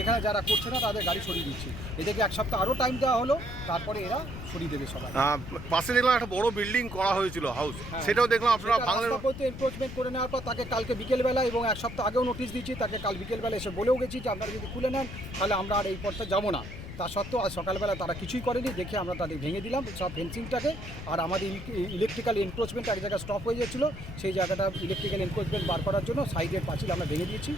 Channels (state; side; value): noise; left; rumble, 11 dB below the sound